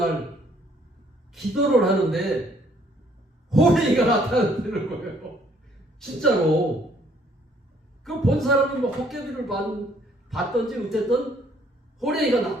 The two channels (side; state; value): both; normal; correlation 0.63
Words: 기도를 하는데 호랭이가 나타나는 거예요. 진짜로. 그 본 사람은 뭐 헛개비를 봤던지 어쨌든 호랭이가